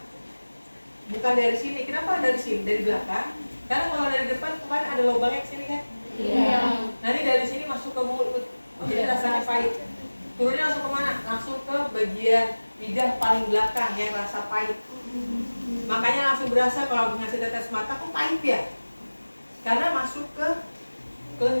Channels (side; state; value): both; inverted; correlation -1.00